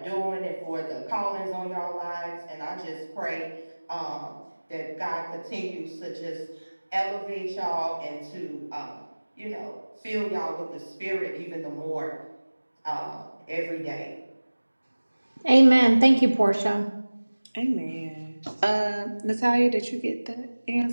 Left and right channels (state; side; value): inverted; both; correlation -1.00